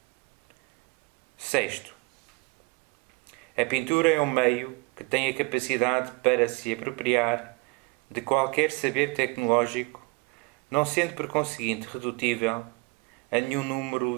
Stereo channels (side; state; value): left; quieter; 26.9 dB